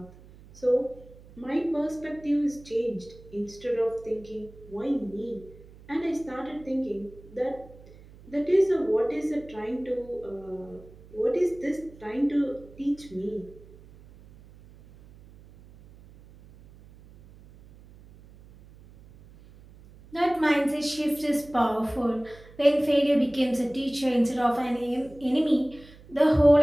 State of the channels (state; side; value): noise; right; hum, 22 dB below the sound